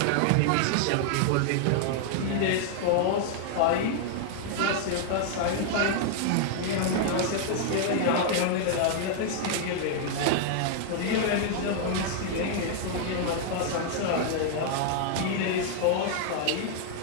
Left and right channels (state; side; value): different; both; correlation -0.01